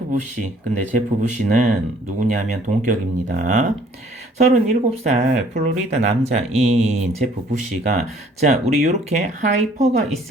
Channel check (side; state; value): both; normal; correlation 0.58